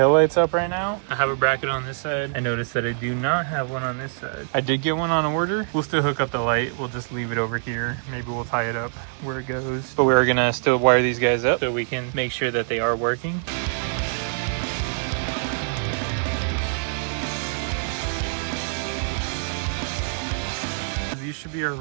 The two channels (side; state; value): left; silent; digital silence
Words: up right now. I have a bracket on this side. I noticed that I do not have one on this side. I did get one on order. We'll still hook up the light. We'll just leave it over here. Maybe we'll tie it up where it goes. But we're gonna still wire these guys up so we can make sure that they are working. These should be our